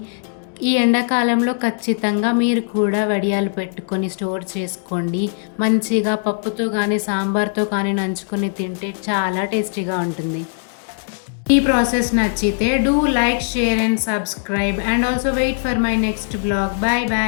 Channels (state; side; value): silent; right; digital silence